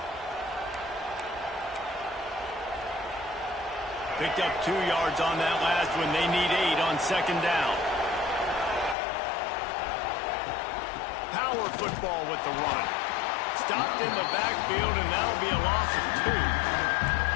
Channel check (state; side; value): drops out; right; at 9.0 s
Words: Picked up 2 yards on that last one. They need 8 on second down. Power football with the run. Stopped in the backfield, and that'll be a loss of 2.